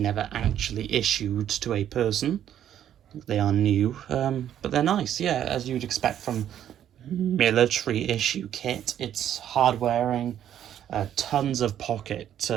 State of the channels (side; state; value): left; quieter; 10.5 dB